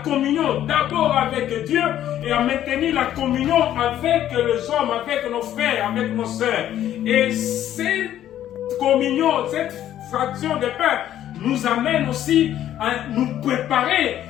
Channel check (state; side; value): quieter; right; 11.7 dB